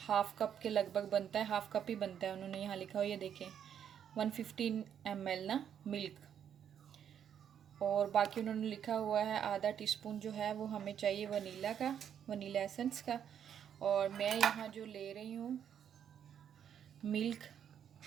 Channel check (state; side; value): quieter; left; 8.8 dB